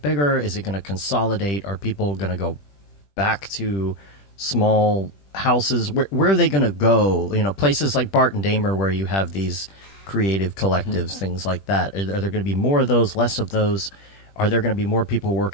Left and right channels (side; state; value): right; late; 20 ms